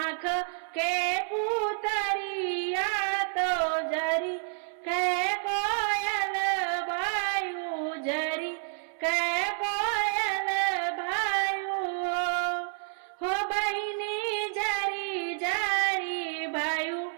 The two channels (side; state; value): left; silent; 58 dB below the other